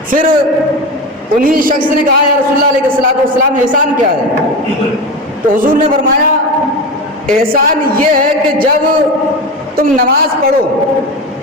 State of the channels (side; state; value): both; normal; correlation 0.23